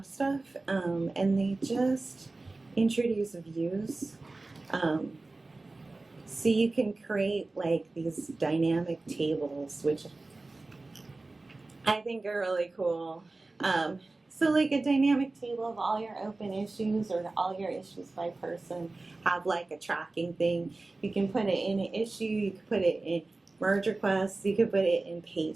stuff. And they just introduce views. So you can create like these dynamic tables, which I think are really cool. So like a dynamic table of all your open issues or all your issues by person, have like a tracking thing. You can put it in an issue, you can put it in merge requests, you can put it in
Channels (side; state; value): left; quieter; 3.3 dB